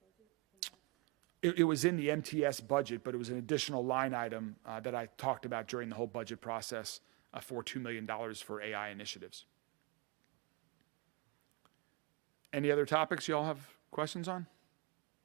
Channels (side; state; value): left; quieter; 26.9 dB